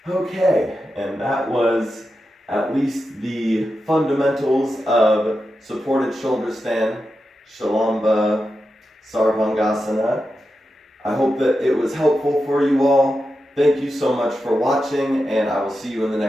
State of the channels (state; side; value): normal; both; correlation 0.89